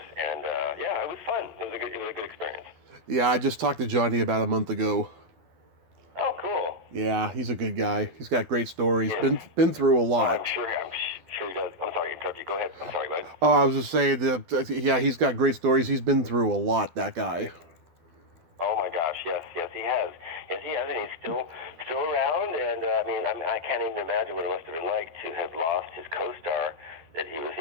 and it was fun. It was a good experience. Yeah, I just talked to Johnny about a month ago. Oh, cool. Yeah, he's a good guy. He's got great stories. Yeah. Been through a lot. I'm sure he does. I'm sorry to interrupt you. Go ahead. I'm sorry, bud. Oh, I was just saying that. Yeah, he's got great stories. He's been through a lot. That guy. Oh my gosh, yes, he has. Yes, he has, and he's still around. And I can't even imagine what it must have been like to have lost his co-star. That he was,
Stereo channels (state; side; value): late; left; 12 ms